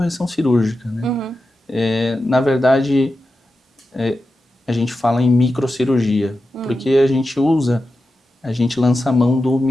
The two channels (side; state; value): both; normal; correlation 0.91